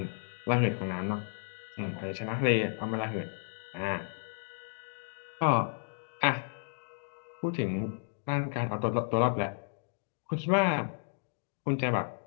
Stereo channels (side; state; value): right; silent; digital silence